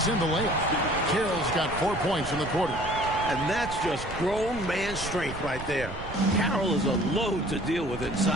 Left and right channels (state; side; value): noise; right; rumble, 10 dB below the sound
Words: in the layup. Carroll's got 4 points in the quarter. And that's just grown man strength right there. Carroll is a load to deal with